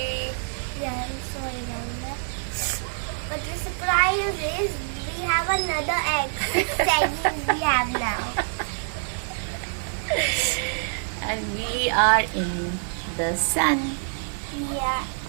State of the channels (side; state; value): left; silent; 61 dB below the other